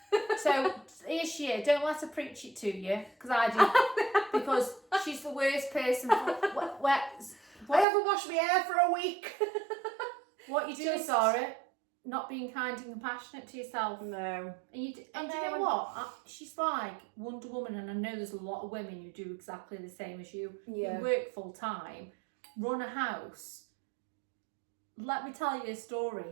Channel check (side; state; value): left; drops out; at 7.9 s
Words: So here's she. Don't let her preach it to you, because I do. Because she's the worst person. I haven't washed my hair for a week. What you doing, Sarah? Not being kind and compassionate to yourself. No. And you know what? She's like Wonder Woman, and I know there's a lot of women who do exactly the same as you. Yeah. You work full time, run a house. Let me tell you a